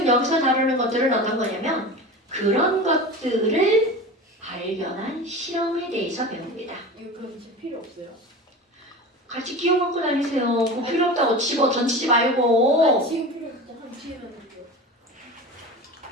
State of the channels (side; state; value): both; normal; correlation 0.31